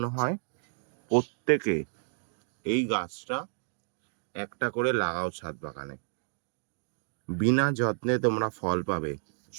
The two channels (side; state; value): left; silent; digital silence